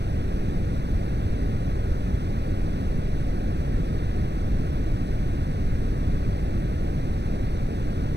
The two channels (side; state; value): left; late; 0.50 ms